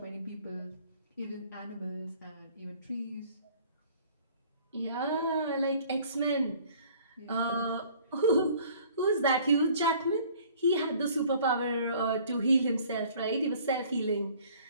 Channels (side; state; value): both; inverted; correlation -0.53